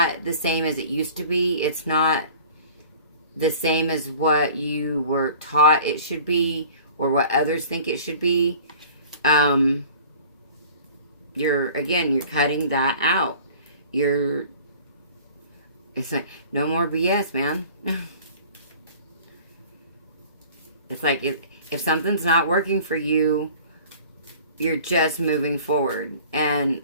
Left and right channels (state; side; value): inverted; both; correlation -0.46